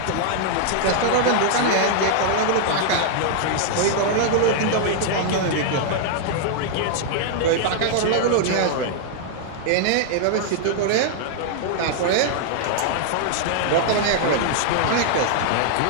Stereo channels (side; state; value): both; different; correlation -0.01